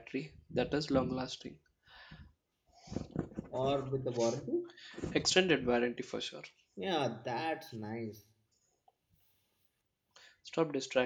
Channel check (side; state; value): both; identical; correlation 1.00